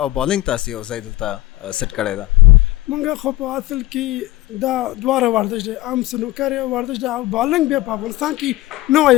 او بالینګ تاسو یو ځای دلته سیټ کړی ده؟ موږ خو په اصل کې دا دواړه ورزش دی، عام سنوکر یو ورزش ده او بالینګ بیا په افغانستان کې نوی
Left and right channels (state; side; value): quieter; right; 18.0 dB